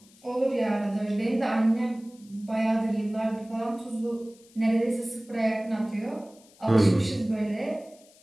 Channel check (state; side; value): noise; left; hiss, 27 dB below the sound